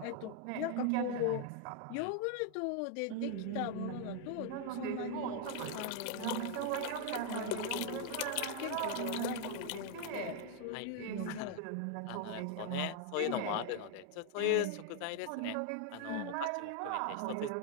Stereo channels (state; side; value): different; both; correlation 0.00